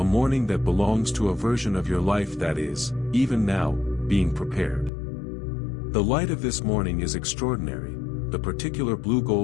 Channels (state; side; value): drops out; right; at 4.9 s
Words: morning that belongs to a version of your life that is, even now, being prepared. The light of this morning is extraordinary, the particular blue